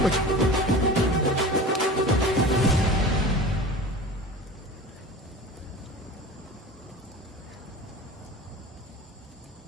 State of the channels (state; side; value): normal; both; correlation 0.36